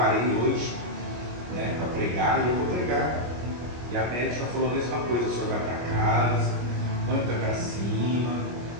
hoje, né, para pregar, e eu vou pregar. E a médica falou a mesma coisa, o senhor vai para casa, põe o pé para cima,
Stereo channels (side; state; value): left; late; 25 ms